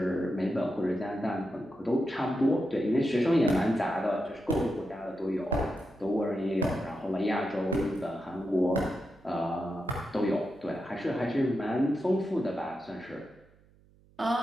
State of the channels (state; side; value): noise; right; hum, 29 dB below the sound